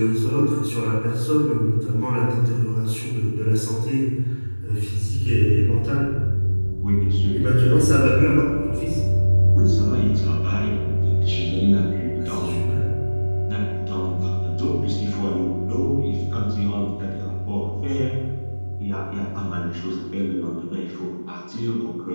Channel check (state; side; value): inverted; both; correlation -1.00